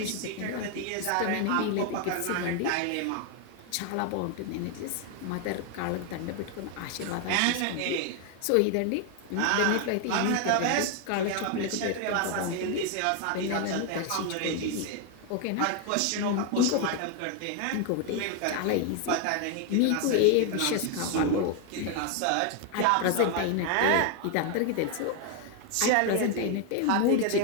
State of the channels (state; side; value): different; both; correlation 0.01